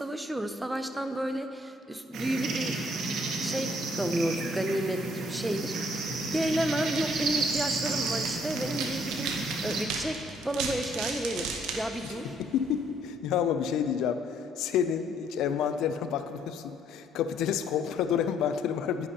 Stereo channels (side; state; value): both; normal; correlation 0.65